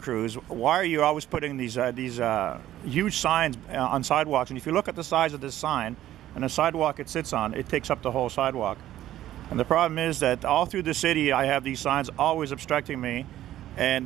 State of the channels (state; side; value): quieter; left; 13.3 dB